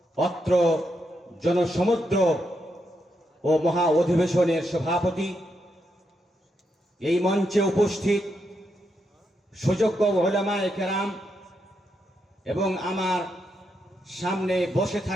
অত্র জনসমুদ্র ও মহা অধিবেশনের সভাপতি, এই মঞ্চে উপস্থিত সুযোগ্য উলামায়ে কেরাম এবং আমার সামনে বসে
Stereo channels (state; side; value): normal; both; correlation 0.82